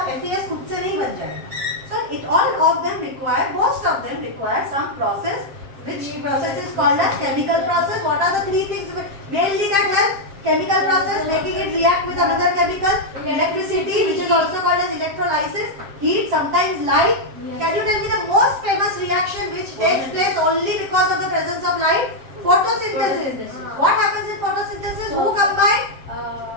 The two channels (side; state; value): left; late; 7.6 ms